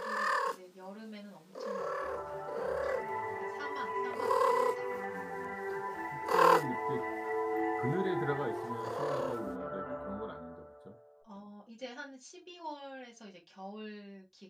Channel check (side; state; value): both; identical; correlation 1.00